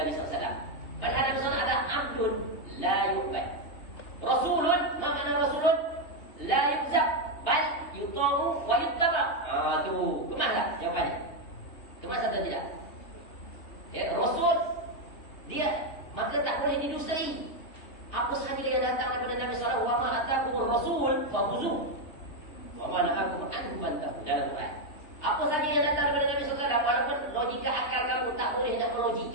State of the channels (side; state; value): right; late; 3.2 ms